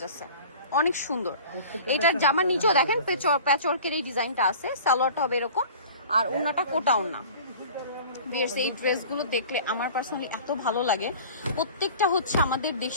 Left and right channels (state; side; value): inverted; both; correlation -0.42